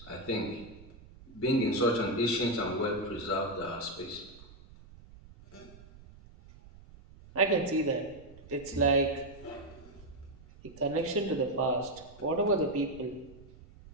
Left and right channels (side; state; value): right; noise; rumble, 20 dB below the sound